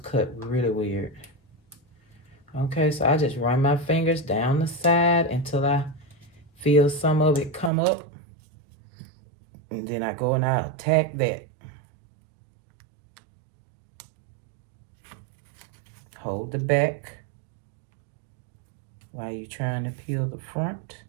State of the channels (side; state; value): left; drops out; at 7.7 s